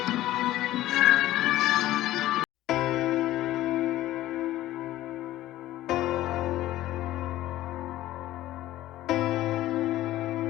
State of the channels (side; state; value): right; quieter; 15.1 dB